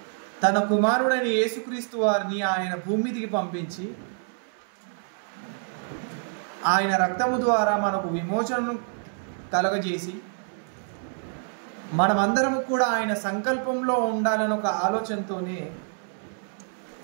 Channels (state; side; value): silent; left; 60 dB below the other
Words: తన కుమారుడైన యేసుక్రీస్తు వారిని ఆయన భూమిదికి పంపించి ఆయన రక్తము ద్వారా మనకు విమోచనను కలగజేసి మనమందరము కూడా ఆయన సంకల్పంలో ఉండాలని ఒక ఆలోచనతోనే